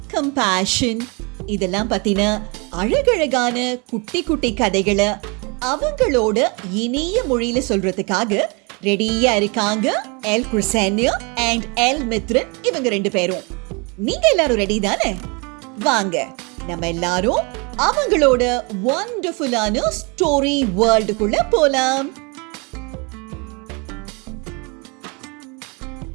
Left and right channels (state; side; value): quieter; left; 30.6 dB